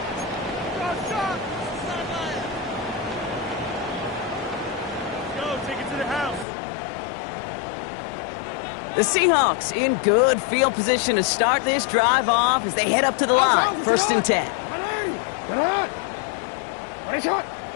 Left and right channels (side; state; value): right; drops out; at 6.5 s